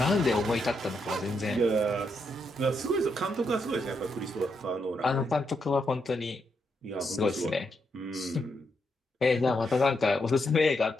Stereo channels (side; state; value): both; normal; correlation 0.80